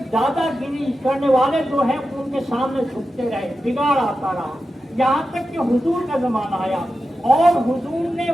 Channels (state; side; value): normal; both; correlation 0.91